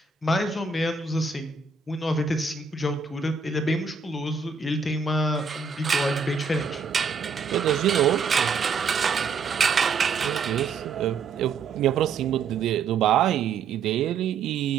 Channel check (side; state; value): left; quieter; 5.2 dB